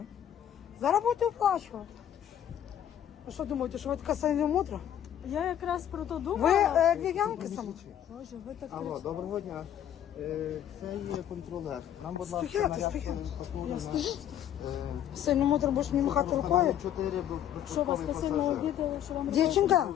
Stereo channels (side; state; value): right; quieter; 10.5 dB